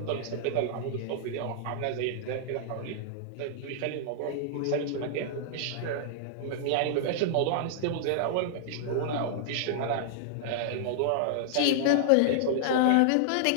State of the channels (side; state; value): both; different; correlation -0.01